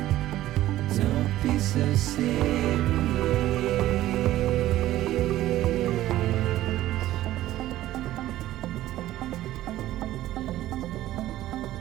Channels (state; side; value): quieter; left; 14.6 dB